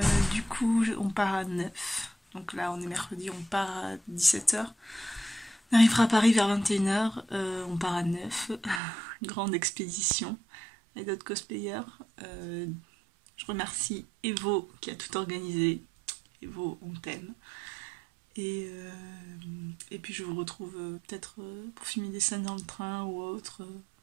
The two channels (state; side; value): drops out; left; at 8.8 s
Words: Du coup, on part à 9. Donc là, on est mercredi, on part à 17 h. On arrivera à Paris vers 21 h, on part à 9, grande expédition, avec d'autres cosplayers. Je remercie Evo qui a tout organisé. Evo, on t'aime. Et puis je vous retrouve peut-être pour filmer des scènes dans le train ou autre.